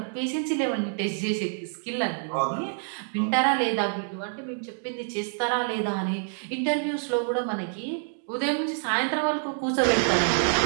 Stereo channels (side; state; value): left; silent; 60 dB below the other